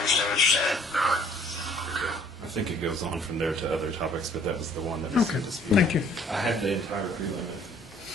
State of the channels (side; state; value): both; normal; correlation 0.57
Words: what you're saying. All right. Okay. I think it goes on from there to other topics, but that was the one that Okay, was disputed. thank you. I have the entire prelim